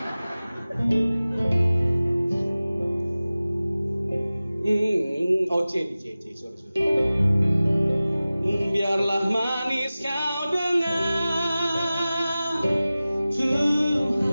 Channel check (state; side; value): inverted; both; correlation -0.97